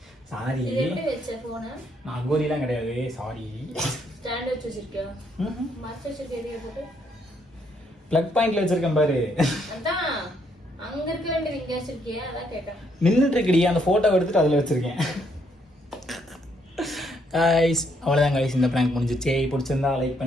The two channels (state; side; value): normal; both; correlation 0.72